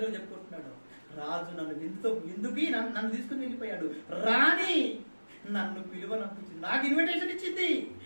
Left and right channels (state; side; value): inverted; both; correlation -1.00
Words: చెప్పుకుంటున్నాడు. రాజు నన్ను విందుకి నన్ను తీసుకుని వెళ్ళిపోయాడు. రాణి నన్ను పిలువనంపించింది, నాకు ఇన్విటేషన్ ఇచ్చింది.